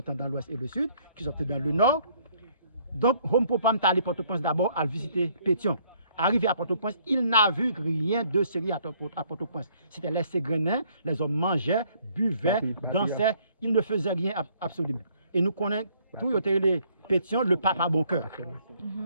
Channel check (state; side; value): inverted; both; correlation -0.64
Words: dans l'ouest et le sud, qui sont dans le nord. Donc, Rompo Palma est allé à Port-au-Prince d'abord à visiter Pétion. Arrivé à Port-au-Prince, il n'a vu rien de sérieux à Port-au-Prince. C'était les Ségrenins, les hommes mangeaient, buvaient, dansaient, ils ne faisaient rien absolument. Et nous connaissons tout les Pétion, le pape à bon cœur.